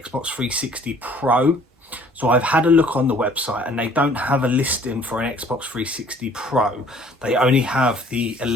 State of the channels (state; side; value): normal; both; correlation 0.55